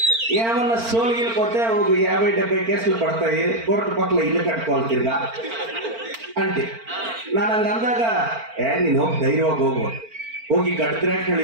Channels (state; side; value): late; left; 4.4 ms